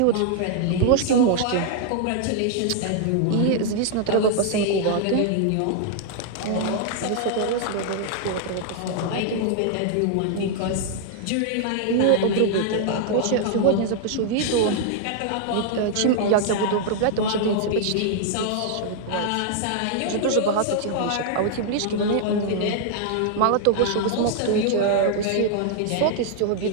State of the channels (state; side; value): different; both; correlation -0.01